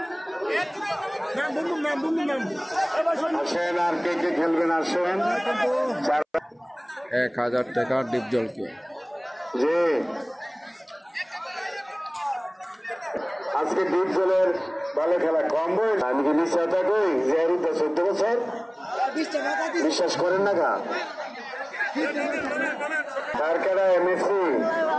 আসেন আর কে কে খেলবেন আসেন। 1000 টাকা ডিপজলকে। যে আজকে ডিপজলের ভালো খেলা কম বয়স। আমি কি বিশ্বাসটা কই যে 14 বছর বিশ্বাস করেন না গা তার খেলা এমএসসি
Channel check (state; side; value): identical; both; correlation 1.00